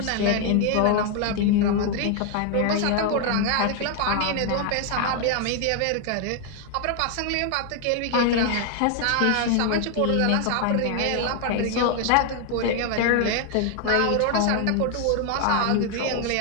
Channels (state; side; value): different; both; correlation 0.00